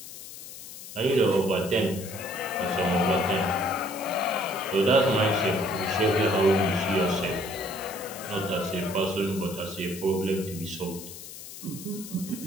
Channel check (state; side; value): noise; left; hiss, 13 dB below the sound